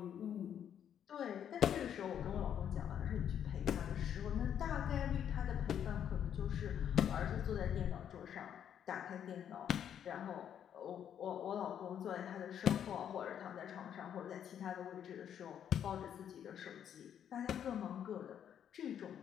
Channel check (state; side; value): quieter; right; 9.2 dB